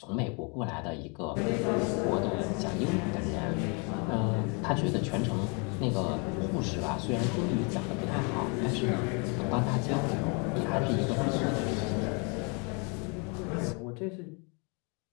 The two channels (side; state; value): right; quieter; 34.0 dB